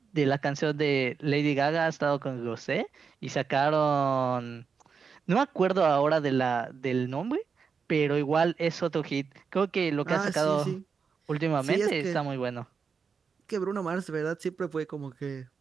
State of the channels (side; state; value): left; quieter; 5.8 dB